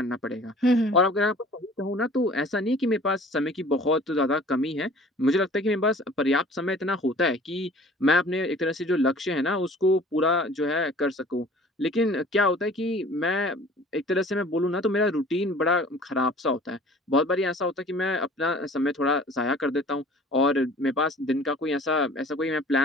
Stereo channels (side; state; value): both; normal; correlation 0.48